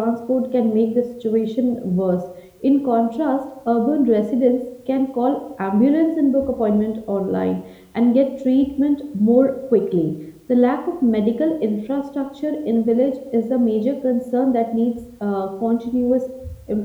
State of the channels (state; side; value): identical; both; correlation 1.00